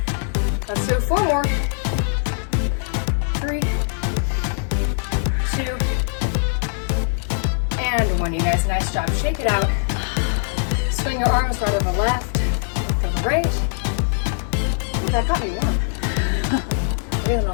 Let's do 4 more. 3, 2, and 1. You guys, nice job. Shake it out. Swing your arms right over left, over right. Ooh, that got me warm. Breathing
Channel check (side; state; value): right; silent; digital silence